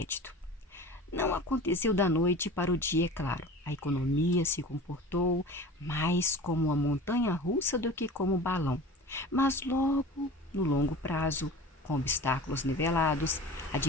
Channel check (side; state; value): both; normal; correlation 0.37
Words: Não aconteceu da noite para o dia, é claro. A economia se comportou mais como uma montanha russa do que como um balão. Mas logo, no longo prazo, com obstáculos nivelados, a